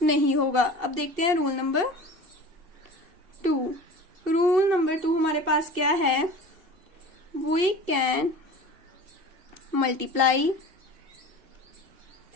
नहीं होगा। अब देखते हैं रूल नंबर 2। रूल नंबर 2 हमारे पास क्या है, we can multiply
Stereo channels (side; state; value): left; late; 2.7 ms